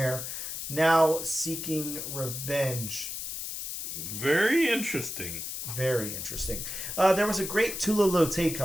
now seeking revenge. Very interesting. Very interesting. There was a great Tula Lote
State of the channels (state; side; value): noise; left; hiss, 6 dB below the sound